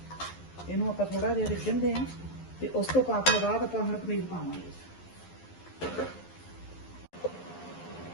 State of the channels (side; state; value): right; late; 11 ms